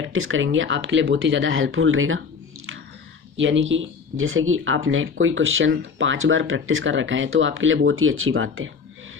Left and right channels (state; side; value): quieter; right; 5.7 dB